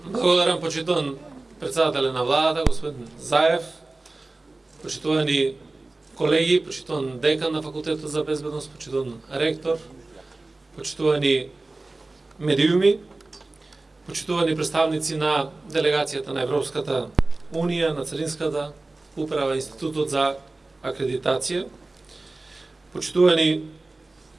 Благодарам, почитуван председателя на владата, господин Заев, почитувани колеги, почитуван декан на Факултетот за безбедност, почитуван ректор, почитувани медиуми, почитувани представници на делегацијата на Европската Унија, на Царинската управа, Институтот за акредитација, почитувани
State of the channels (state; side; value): quieter; left; 3.1 dB